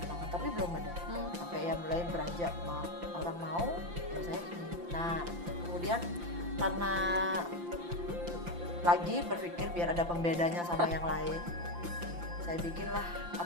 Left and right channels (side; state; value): left; late; 5.8 ms